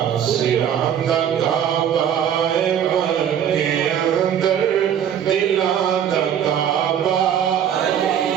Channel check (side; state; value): left; quieter; 9.3 dB